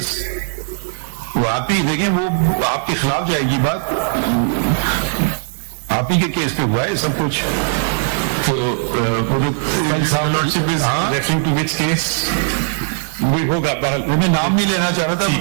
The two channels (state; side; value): silent; left; digital silence